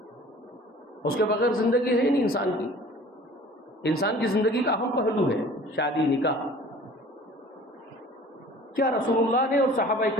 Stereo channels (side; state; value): both; normal; correlation 0.47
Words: اس کے بغیر زندگی ہے نہیں انسان کی۔ انسان کی زندگی کا اہم پہلو ہے شادی نکاح۔ کیا رسول اللہ نے اور صحابہ